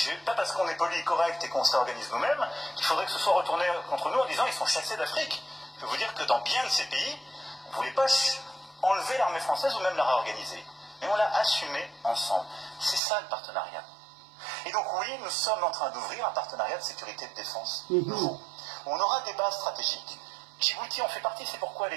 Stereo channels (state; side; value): drops out; left; at 13.0 s